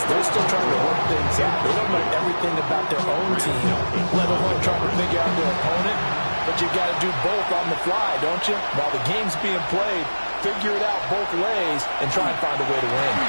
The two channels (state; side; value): inverted; both; correlation -1.00